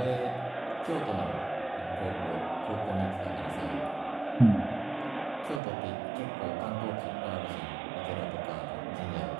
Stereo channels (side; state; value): left; drops out; at 5.6 s